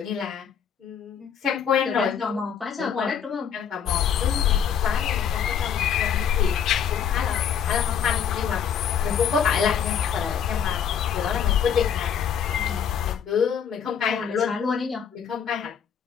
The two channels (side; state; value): right; quieter; 8.0 dB